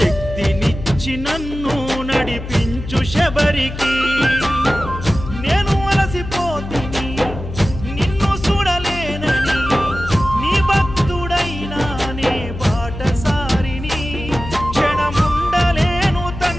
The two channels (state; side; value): noise; left; hum, 9 dB below the sound